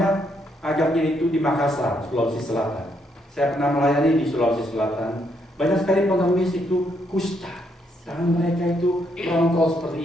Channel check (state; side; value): normal; both; correlation 0.75